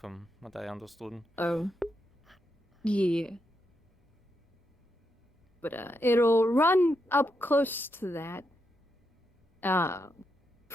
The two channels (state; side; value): normal; both; correlation 0.83